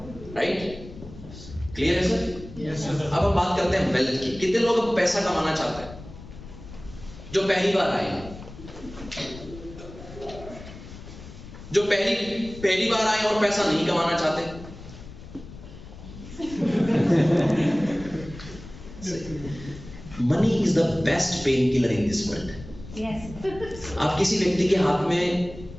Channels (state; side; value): noise; left; rumble, 15 dB below the sound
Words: राइट। क्लियर है सर? Yes sir. अब हम बात करते हैं वेल्थ की। कितने लोग अब पैसा कमाना चाहते हैं जो पहली बार आए हैं? जो पहली बार आए और पैसा नहीं कमाना चाहते? Money is the best pain killer in this world. आप किसी व्यक्ति के हाथ में